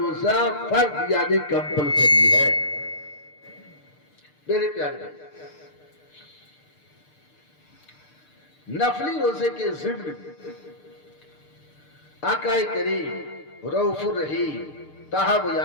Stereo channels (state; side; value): late; right; 6.7 ms